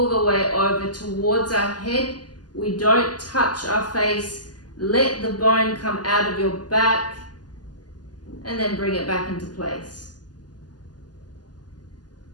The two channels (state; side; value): late; right; 0.70 ms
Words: the way over towards our head. We don't touch our face. Let the bone come out of your back and then bring it back into place.